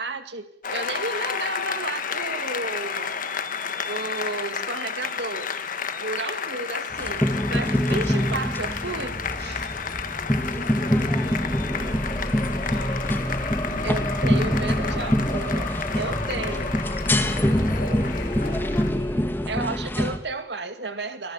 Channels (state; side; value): normal; both; correlation 0.58